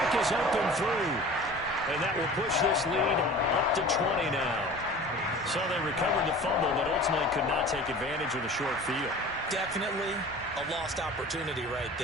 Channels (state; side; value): normal; both; correlation 0.40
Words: is up and through. And that will push this lead up to 20 now. So they recovered the fumble, but ultimately could not take advantage of the short field. Definitely a lost opportunity right